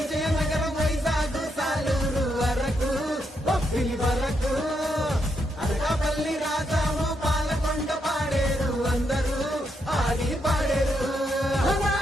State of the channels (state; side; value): normal; both; correlation 0.80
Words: వైజాగ్ సాలూరు వరకు బొబ్బిలి వరకు అనకాపల్లి రాజాము పాలకొండ పాడేరు అందరూ ఆడి పాడేరు